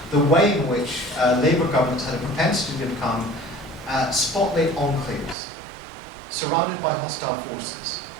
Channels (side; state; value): left; drops out; at 5.4 s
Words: the way in which Labour governments had a propensity to become spotlight enclaves, surrounded by hostile forces.